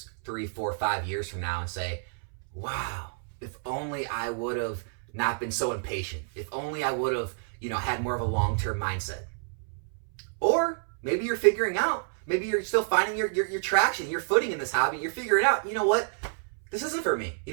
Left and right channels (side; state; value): left; silent; 59 dB below the other